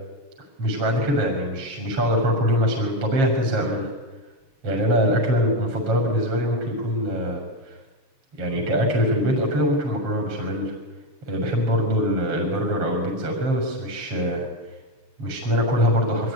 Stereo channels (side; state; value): left; late; 7.3 ms